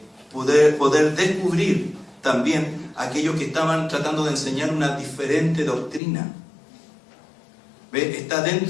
poder descubrir también aquellos que estaban tratando de enseñar una diferente doctrina. ¿Ve? Está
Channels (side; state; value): right; drops out; at 6.0 s